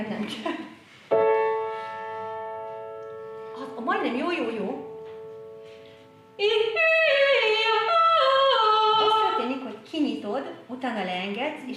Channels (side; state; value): both; identical; correlation 1.00